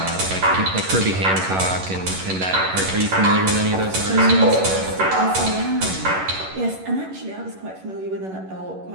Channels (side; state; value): left; late; 11 ms